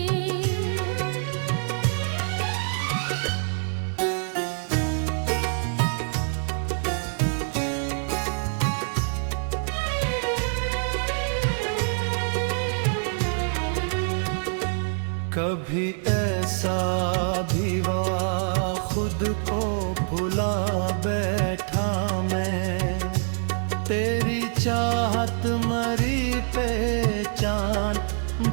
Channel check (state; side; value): silent; left; 61 dB below the other